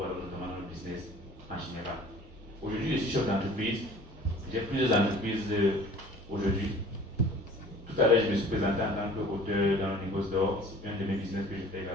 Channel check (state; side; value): normal; both; correlation 0.48